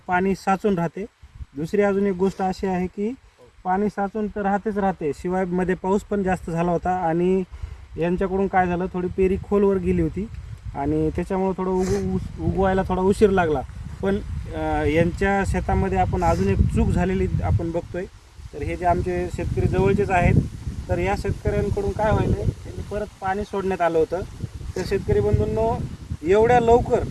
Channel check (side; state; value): both; identical; correlation 1.00